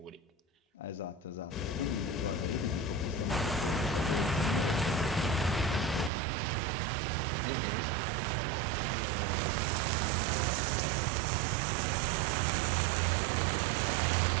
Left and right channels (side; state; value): left; drops out; at 6.1 s